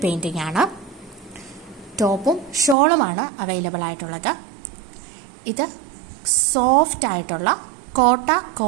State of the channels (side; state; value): left; drops out; at 2.8 s